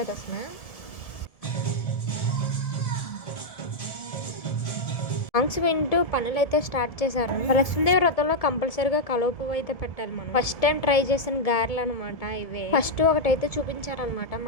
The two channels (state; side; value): late; right; 1.7 ms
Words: అసలు. సాంగ్స్ వింటూ పనులు అయితే స్టార్ట్ చేశారు. లక్ష్మీదేవి వ్రతంలో కంపల్సరీగా కలువ పువ్వు అయితే పెట్టాలి మనం. ఫస్ట్ టైం ట్రై చేసిన గారెలు అనమాట ఇవే. ఫస్ట్ ఒకటైతే చూపించారనమాట